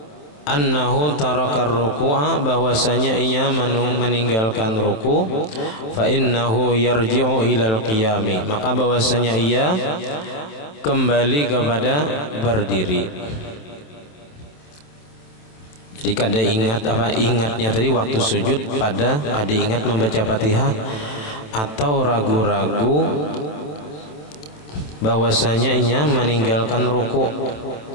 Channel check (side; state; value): right; late; 27 ms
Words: annahu tarakar ruku'a, bahwasanya ia meninggalkan ruku, fa innahu yarji'u ilal qiyami, maka bahwasanya ia kembali kepada berdiri. Jadi kada ingat ingatnya tadi waktu sujud pada kada ingat membaca Fatihah, atau ragu-ragu bahwasanya ia meninggalkan ruku.